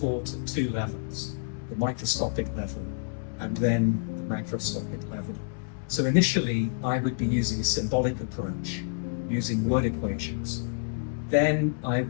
taught at two levels, the microscopic level and then the macroscopic level. So initially, I would be using a symbolic approach, using word equations. Then I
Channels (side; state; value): right; silent; digital silence